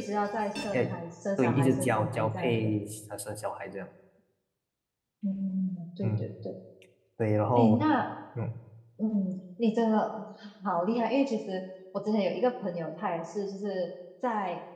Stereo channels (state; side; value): identical; both; correlation 1.00